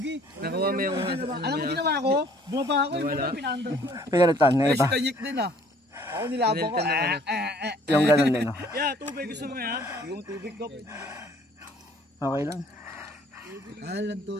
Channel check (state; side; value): normal; both; correlation 0.57